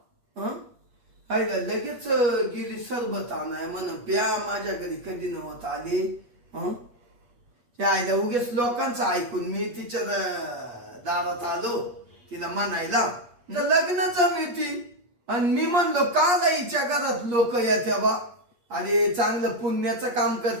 आयला लगेच गेली सरबत आणाय म्हण प्या. माझ्या घरी कधी नव्हत आले. आयला उगेच लोकांचं ऐकून मी तिच्या दारात आलो तिला म्हणायला लग्न जमती. आणि मी म्हणलो का हिच्या घरात लोक येत्या बा. अरे चांगलं पुण्याचं काम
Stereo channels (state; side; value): late; left; 8.4 ms